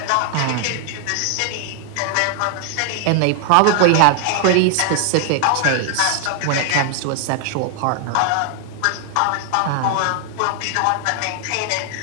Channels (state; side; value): different; both; correlation 0.00